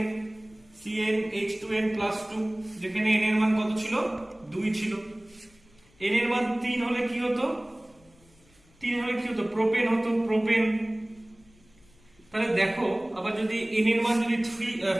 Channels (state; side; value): noise; left; rumble, 30 dB below the sound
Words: CnH2n+2, যেখানে n এর মান কত ছিল? 2 ছিল। n এর মান 3 হলে কি হতো? প্রোপেন হতো, প্রোপেন। তাহলে দেখো, আবার যদি n এর মান যদি